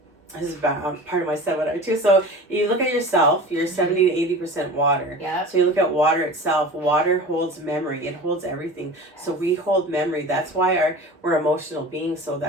this is part of my seminar too. So you look at yourself, you're 70 to 80% water. Yeah. So you look at water itself. Water holds memory. It holds everything. So we hold memory. That's why we're emotional beings. So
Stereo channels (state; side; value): normal; both; correlation 0.36